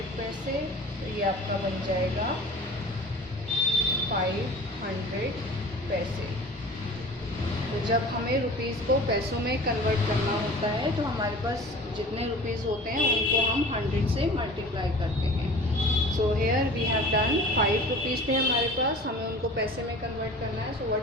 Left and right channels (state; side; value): normal; both; correlation 0.41